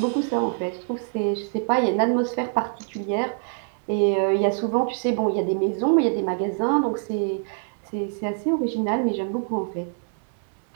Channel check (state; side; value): silent; left; digital silence